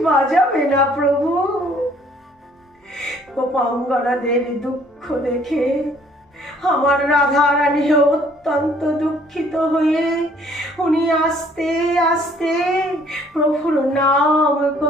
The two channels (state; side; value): normal; both; correlation 0.60